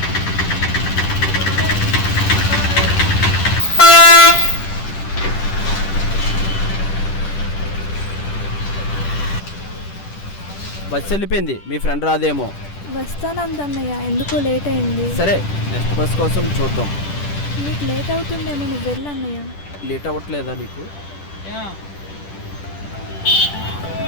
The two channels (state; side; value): late; right; 10 ms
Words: బస్సు వెళ్ళిపోయింది, మీ ఫ్రెండ్ రాదేమో. వస్తానందన్నయ్య, ఎందుకో లేట్ అయింది. సరే, నెక్స్ట్ బస్ కోసం చూద్దాం. నీకు లేట్ అవుతుందేమో, నువ్వు వెళ్ళన్నయ్య. లేట్ అవ్వట్లేదా నీకు?